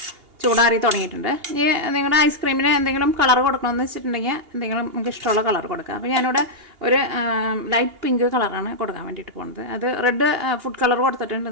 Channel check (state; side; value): late; left; 2.8 ms